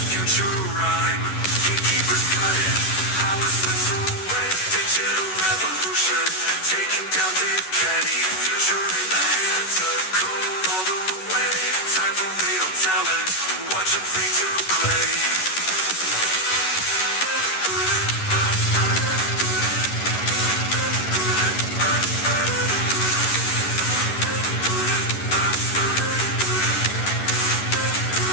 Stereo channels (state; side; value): late; right; 11 ms